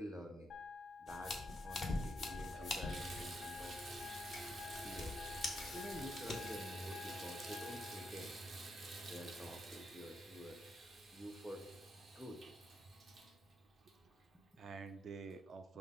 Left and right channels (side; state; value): both; normal; correlation 0.80